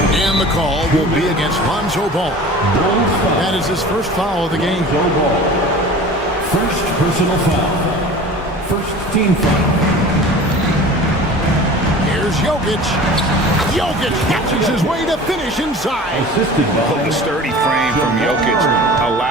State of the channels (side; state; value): both; normal; correlation 0.40